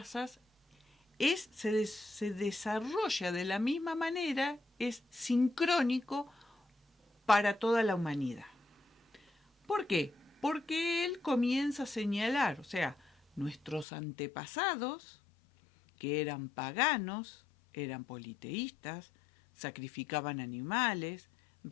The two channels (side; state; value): right; drops out; at 13.9 s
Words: se desarrolla de la misma manera, es sincrónico para toda la humanidad. ¿Por qué? Porque él comienza a señalar, o sea, nuestros antepasados, que eran paganos, eran politeístas, sacrificaban animales,